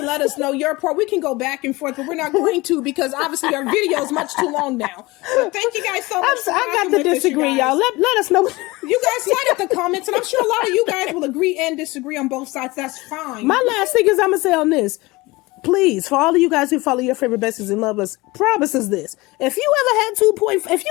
let us know your part. We can go back and forth, but we're not going to because obviously our video is much too long now. But thank you guys so much. I got to disagree, y'all. Let us know. You guys light up the comments, and I'm sure a lot of you guys will agree and disagree on both sides. That's fine. My last thing is I'm going to say on this. Please, for all of you guys who follow your favorite besties and love us, promises this. If you ever had if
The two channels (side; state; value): right; quieter; 22.0 dB